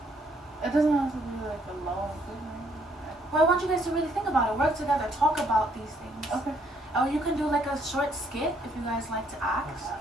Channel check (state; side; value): normal; both; correlation 0.68